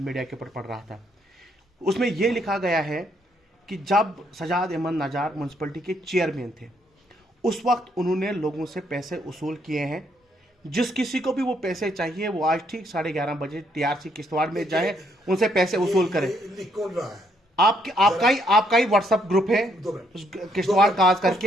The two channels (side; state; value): both; normal; correlation 0.72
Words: मीडिया के ऊपर पढ़ रहा था, उसमें यह लिखा गया है कि जब सजाद अहमद नजार म्यूनसिपलिटी के चेयरमैन थे, उस वक्त उन्होंने लोगों से पैसे वसूल किए हैं। जिस किसी को भी वो पैसे चाहिए, वो आज ठीक 11:30 बजे TRC किश्तवाड़ में जाए, उनसे पैसे वसूल करें। लिख कौन रहा है? आपका ही व्हाट्सएप ग्रुप है किश्तवाड़ काज